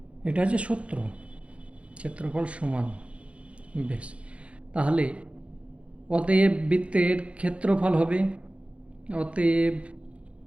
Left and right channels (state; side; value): late; left; 0.061 ms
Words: এটা হচ্ছে সূত্র, ক্ষেত্রফল সমান। বেশ, তাহলে অতএব বৃত্তের ক্ষেত্রফল হবে, অতএব